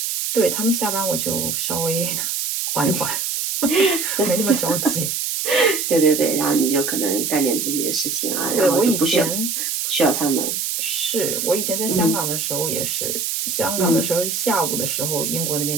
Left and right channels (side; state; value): right; noise; hiss, 1 dB below the sound